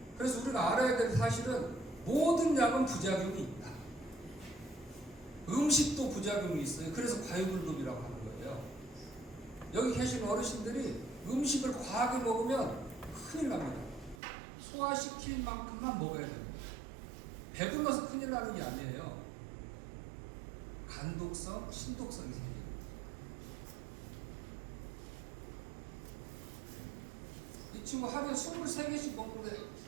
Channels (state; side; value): drops out; left; at 14.2 s